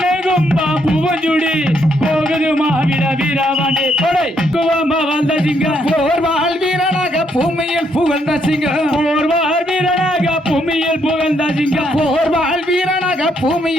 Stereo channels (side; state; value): both; normal; correlation 0.74